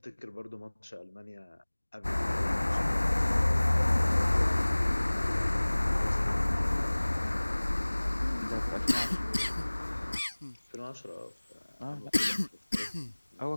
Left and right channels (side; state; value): both; inverted; correlation -1.00